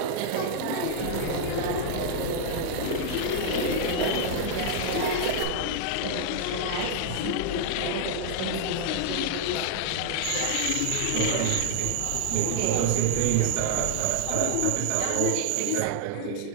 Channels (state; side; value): different; both; correlation -0.01